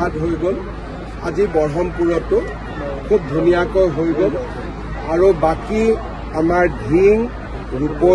হৈ গ'ল, আজি ব্ৰহ্মপুৰতো খুব ধুনীয়াকৈ হৈ গ'ল। আৰু বাকী আমাৰ ধিং,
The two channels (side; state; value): both; identical; correlation 1.00